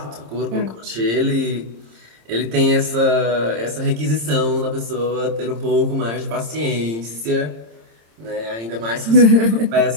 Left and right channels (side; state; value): left; late; 26 ms